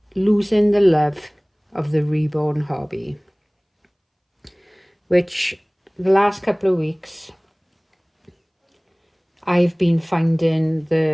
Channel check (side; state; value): both; identical; correlation 1.00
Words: losing the love of the reborn hobby, which the last couple of weeks I've been finding